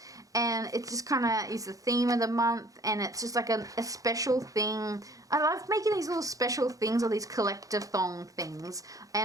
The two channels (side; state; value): left; late; 0.17 ms